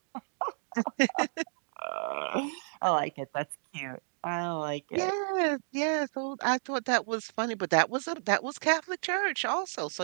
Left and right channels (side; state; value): left; silent; digital silence